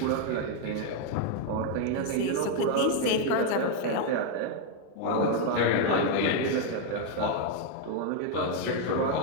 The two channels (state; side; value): different; both; correlation 0.01